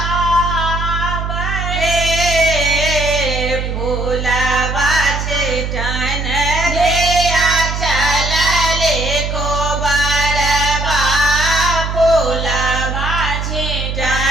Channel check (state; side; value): noise; right; hum, 3 dB below the sound